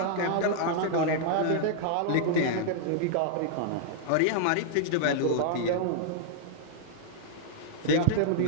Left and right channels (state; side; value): different; both; correlation -0.01